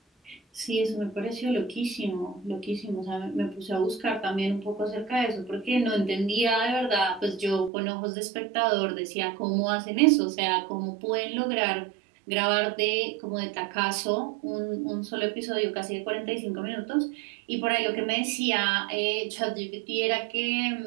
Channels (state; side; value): drops out; left; at 7.7 s